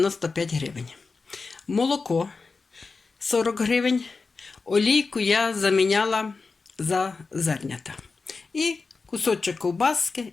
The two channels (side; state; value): right; quieter; 4.3 dB